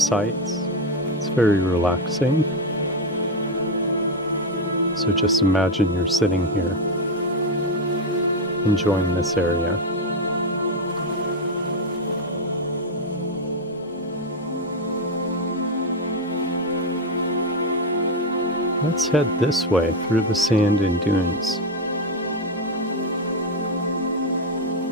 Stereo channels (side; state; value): both; normal; correlation 0.07